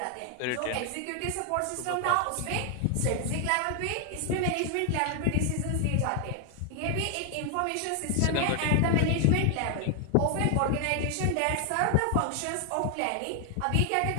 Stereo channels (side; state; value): both; different; correlation 0.00